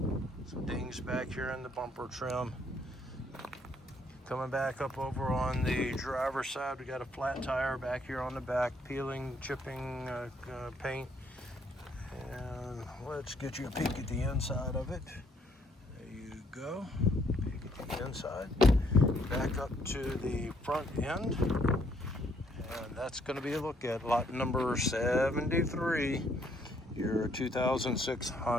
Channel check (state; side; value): normal; both; correlation 0.68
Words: Some dings back here in the bumper trim. Coming back up over on the driver's side, we got a flat tire back here on the back, peeling, chipping paint. And let's get you a peek at the inside of it. There you go. Peek at the inside. Back up to the front end. And that's going to be a look at lot number 73, your 2006